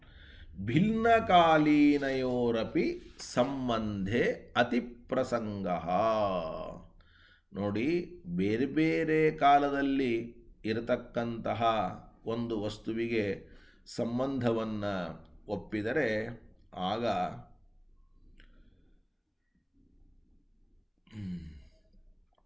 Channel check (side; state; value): both; identical; correlation 1.00